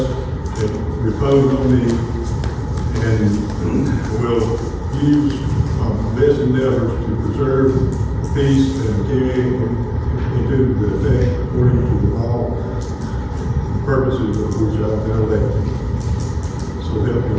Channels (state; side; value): identical; both; correlation 1.00